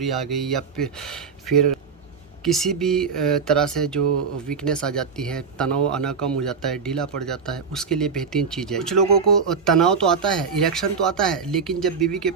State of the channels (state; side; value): quieter; left; 5.6 dB